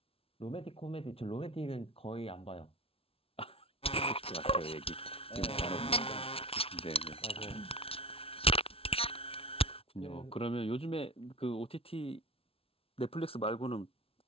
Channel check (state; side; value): late; right; 0.27 ms